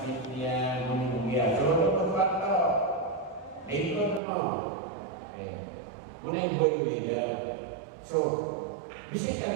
niya, muna yung buya. So, ano pa ito? Ito mo. Okay. Muna yung boy leader. So,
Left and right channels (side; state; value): left; drops out; at 4.2 s